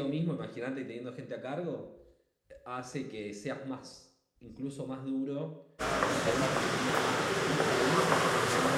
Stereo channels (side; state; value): both; identical; correlation 1.00